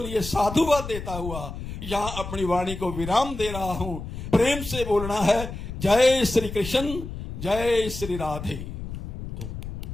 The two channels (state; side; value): noise; left; rumble, 8 dB below the sound